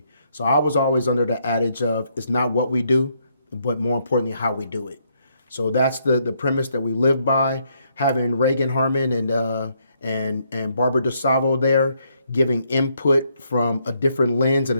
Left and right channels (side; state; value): both; inverted; correlation -0.74